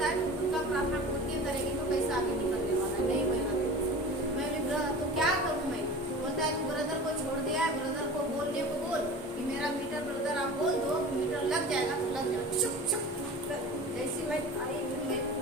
है तुम खुद का प्रार्थना खुद की करेगी तो कैसे आगे निकलने वाला है, नहीं होगा। मैं बोली तो क्या करूँ मैं? बोलता है तू ब्रदर को छोड़ दिया है, ब्रदर को बोलने को बोल कि मेरा मीटर ब्रदर आप बोल दो, मीटर लग जाएगा तो लग जाएगा। चुप चुप। जैसे मैं आई मैं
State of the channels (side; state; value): both; normal; correlation 0.36